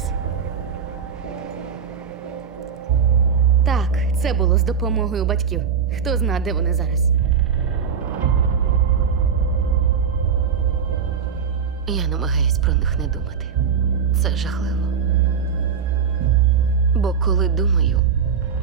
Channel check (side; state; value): left; quieter; 6.8 dB